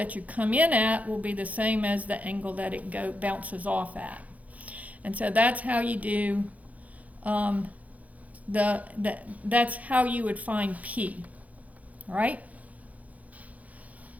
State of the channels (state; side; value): late; left; 0.072 ms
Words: you come in at will be the same as the angle that it bounces off at. And so that's how you do, that's how you would find P. All right?